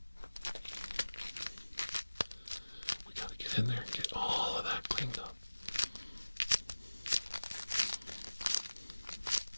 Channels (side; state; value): both; inverted; correlation -1.00